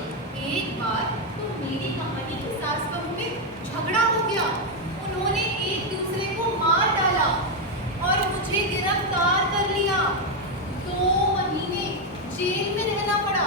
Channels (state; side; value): normal; both; correlation 0.04